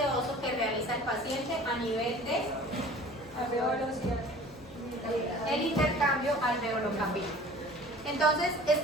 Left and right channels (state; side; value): normal; both; correlation 0.46